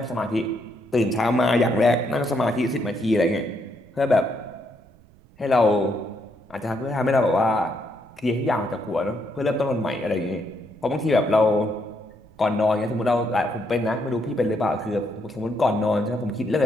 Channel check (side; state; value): right; noise; rumble, 27 dB below the sound